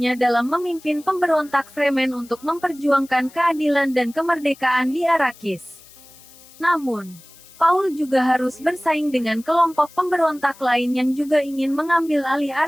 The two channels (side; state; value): left; noise; hiss, 23 dB below the sound